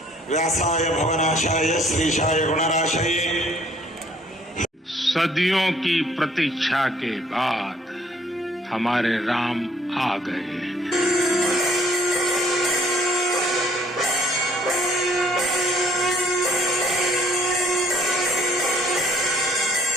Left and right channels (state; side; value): normal; both; correlation 0.60